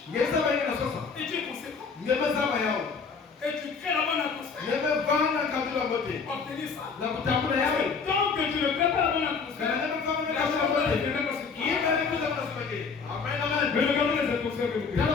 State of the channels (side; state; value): right; quieter; 5.3 dB